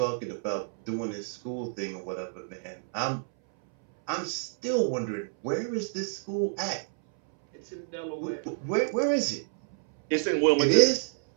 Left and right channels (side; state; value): left; silent; 59 dB below the other